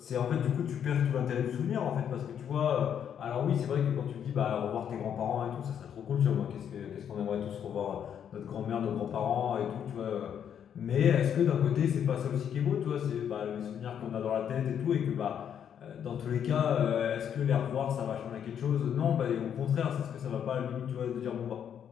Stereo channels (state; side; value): quieter; right; 8.7 dB